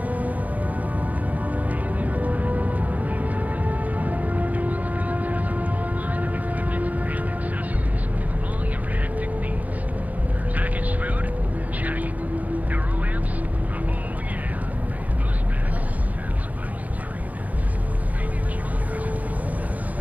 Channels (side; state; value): left; late; 0.076 ms